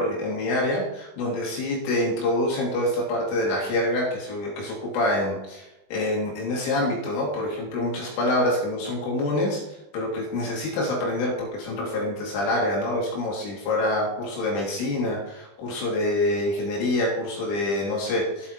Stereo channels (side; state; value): right; late; 20 ms